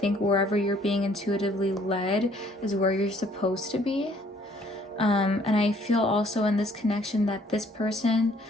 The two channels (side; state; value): both; normal; correlation 0.61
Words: wherever you're being intuitively led is where you're supposed to be. And I feel also in this connection that this person,